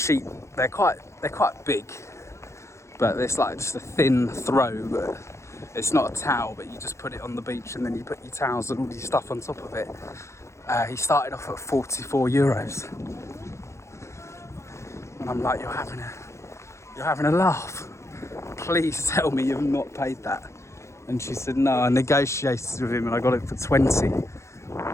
They're quite big, but it's like just a thin throw. But it's not a towel, but you just put it on the beach and then you put your towels and all your stuff on top of it. He started off at 44 euros, and I'm like, you're having a laugh. Please tell me you've not paid that. And she said, no, I negotiated with him and I got it for 20.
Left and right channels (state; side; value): late; right; 0.14 ms